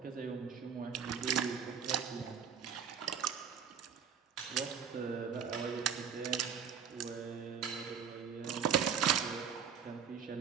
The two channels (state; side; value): quieter; left; 7.3 dB